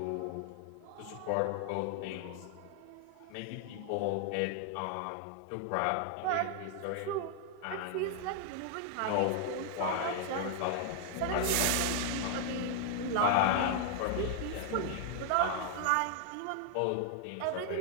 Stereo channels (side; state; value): both; different; correlation 0.00